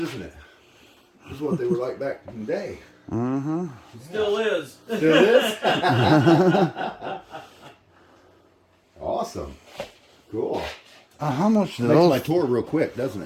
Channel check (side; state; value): both; identical; correlation 1.00